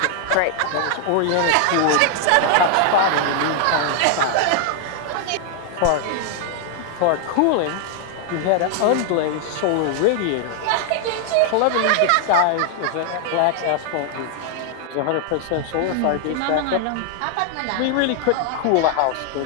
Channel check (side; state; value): both; different; correlation 0.00